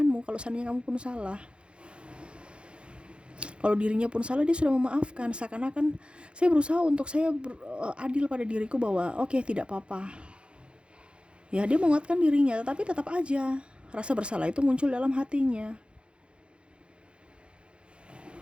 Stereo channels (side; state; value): left; late; 0.057 ms